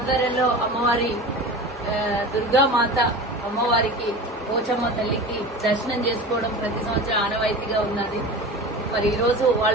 అమ్మవారి దుర్గామాత అమ్మవారికి పోచమ్మ తల్లికి దర్శనం చేసుకోవడం ప్రతి సంవత్సరం ఆనవాయితీగా ఉన్నది। మరి ఈ రోజు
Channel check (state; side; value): normal; both; correlation 0.33